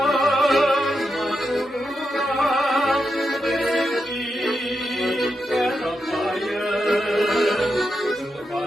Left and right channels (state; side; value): normal; both; correlation 0.86